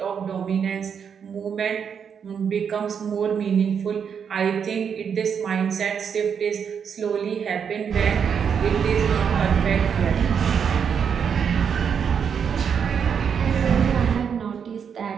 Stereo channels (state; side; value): quieter; left; 7.2 dB